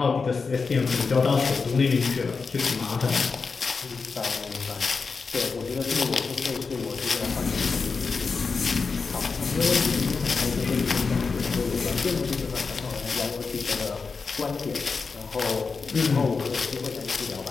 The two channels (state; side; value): quieter; right; 4.8 dB